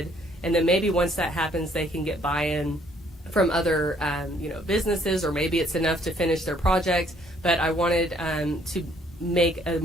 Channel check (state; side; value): normal; both; correlation 0.64